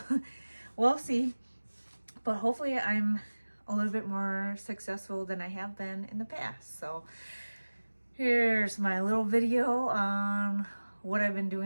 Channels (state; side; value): inverted; both; correlation -1.00